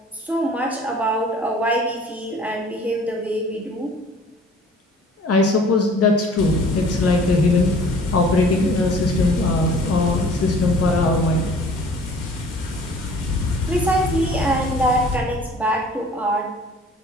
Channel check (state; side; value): normal; both; correlation 0.50